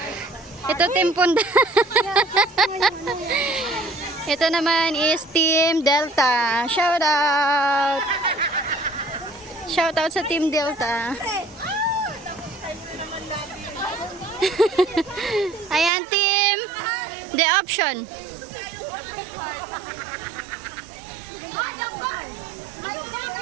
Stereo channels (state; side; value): drops out; left; at 15.9 s